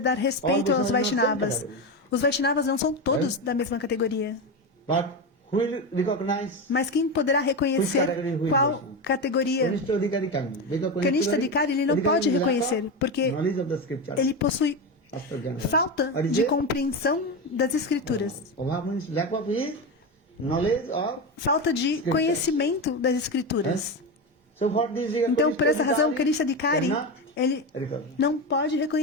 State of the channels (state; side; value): normal; both; correlation 0.17